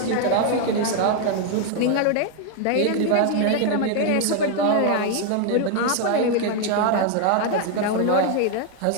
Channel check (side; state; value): both; different; correlation 0.01